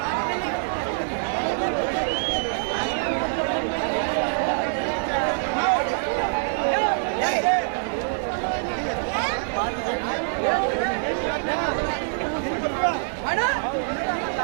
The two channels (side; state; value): left; silent; digital silence